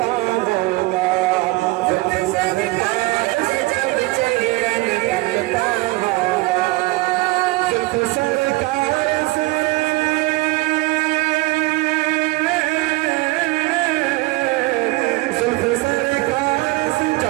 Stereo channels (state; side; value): quieter; left; 21.6 dB